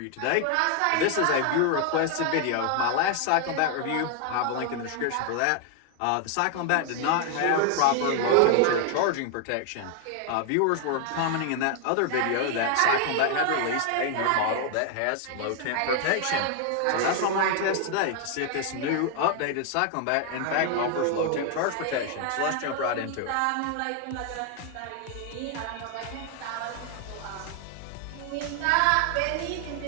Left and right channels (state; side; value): different; both; correlation 0.00